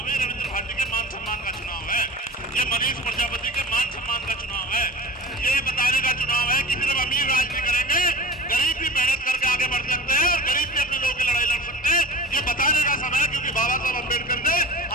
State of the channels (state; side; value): normal; both; correlation 0.35